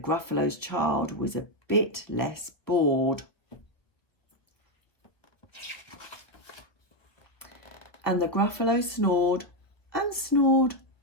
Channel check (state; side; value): late; right; 1.2 ms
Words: child was a bit less bored. And the Gruffalo snored and snored